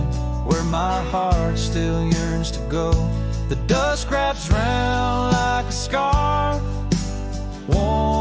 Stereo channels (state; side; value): identical; both; correlation 1.00